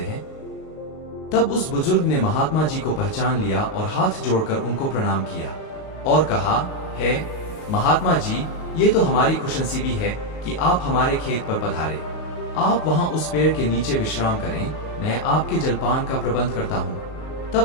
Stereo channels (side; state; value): right; late; 38 ms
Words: तब उस बुजुर्ग ने महात्मा जी को पहचान लिया और हाथ जोड़कर उनको प्रणाम किया और कहा, हे महात्मा जी, ये तो हमारी खुशनसीबी है कि आप हमारे खेत पर पधारे। आप वहां उस पेड़ के नीचे विश्राम करें, मैं आपके जलपान का प्रबंध करता हूँ।